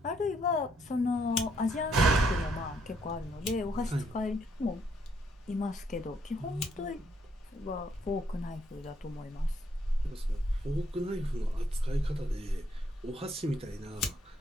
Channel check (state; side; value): normal; both; correlation 0.72